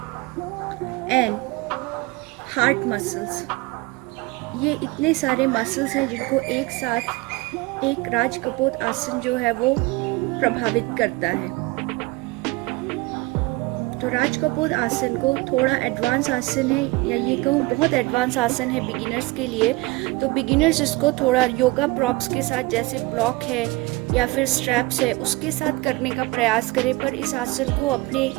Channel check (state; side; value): quieter; left; 22.4 dB